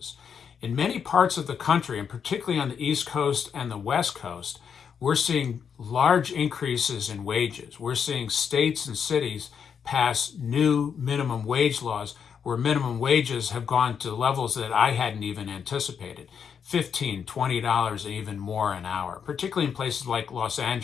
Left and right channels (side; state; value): right; quieter; 7.1 dB